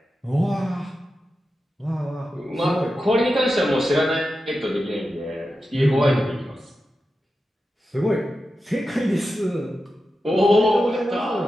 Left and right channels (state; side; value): normal; both; correlation 0.91